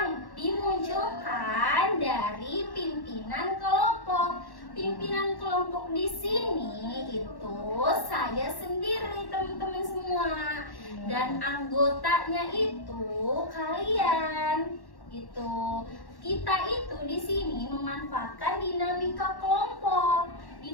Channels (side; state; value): right; late; 1.1 ms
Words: dimunculkan dari pimpinan kelompok. Pimpinan kelompok di sini itu saya sendiri, teman-teman semua. Dan anggotanya itu kalian. Gitu. Kita itu di sini memanfaatkan dinamika kelompok.